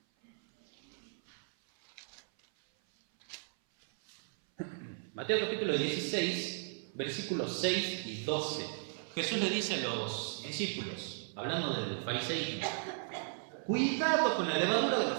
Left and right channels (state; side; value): silent; left; 54 dB below the other